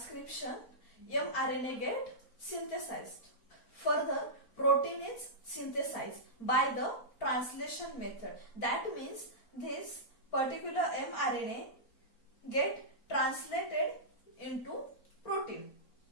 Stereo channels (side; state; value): right; late; 4.4 ms